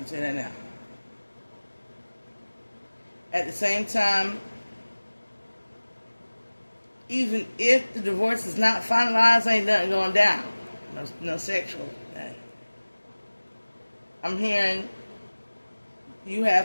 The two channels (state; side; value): inverted; both; correlation -1.00